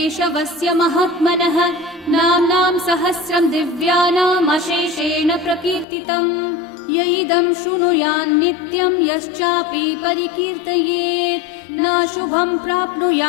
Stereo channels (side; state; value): right; drops out; at 5.9 s